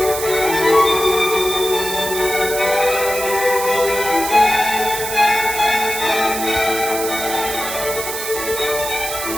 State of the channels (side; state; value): right; noise; hiss, 6 dB below the sound